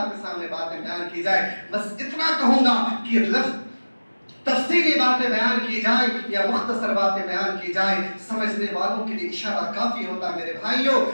کے سامنے باتیں بیان کی جائے. بس اتنا کہوں گا کہ لفظ تفصیلی باتیں بیان کی جائے یا مختصر باتیں بیان کی جائے، سمجھنے والوں کے لیے اشارہ کافی ہوتا ہے میرے بھائیوں۔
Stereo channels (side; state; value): both; inverted; correlation -1.00